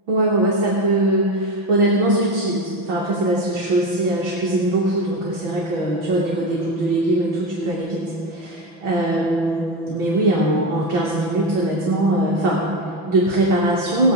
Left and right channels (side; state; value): left; late; 6.0 ms